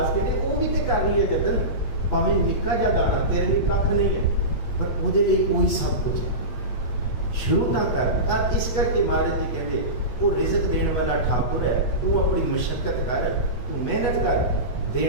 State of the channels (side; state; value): right; late; 8.3 ms